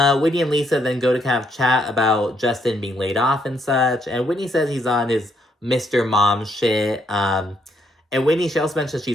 Whitney and Lisa then go to kind of chat about Justin being laid off and such, and Whitney says he's on his Mr. Mom shit. And Whitney, she also mentions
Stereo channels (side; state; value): both; normal; correlation 0.73